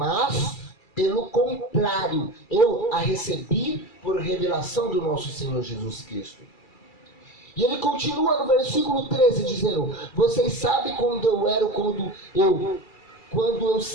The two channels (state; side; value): late; right; 2.3 ms